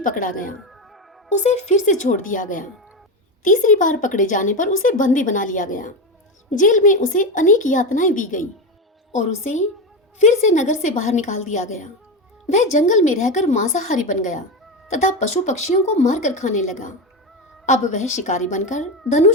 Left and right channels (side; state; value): both; normal; correlation 0.15